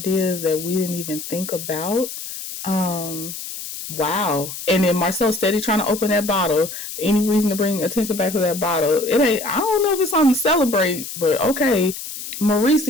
that we didn't even think about. Wow. And then Marcel steady trying to open that bottle. Any reason to bring attention back to that bottle? It ain't. I don't know if it's something to celebrate, but okay. Maurice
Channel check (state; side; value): noise; left; hiss, 9 dB below the sound